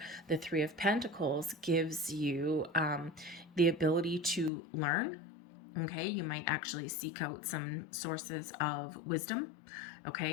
The Three of Pentacles gives you the ability to learn. Okay, you might actually seek out some sources of wisdom.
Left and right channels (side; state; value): right; drops out; at 4.5 s